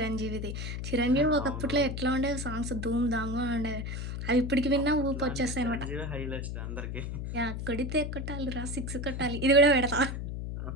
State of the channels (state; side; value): noise; left; hum, 5 dB below the sound